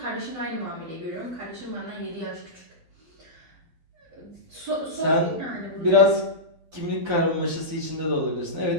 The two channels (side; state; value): left; late; 12 ms